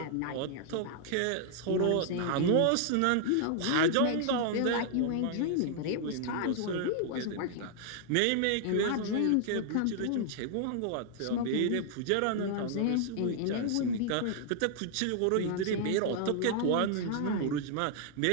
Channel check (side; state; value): both; different; correlation -0.01